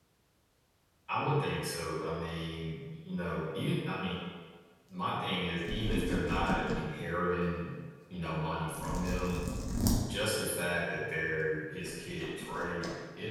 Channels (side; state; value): both; identical; correlation 1.00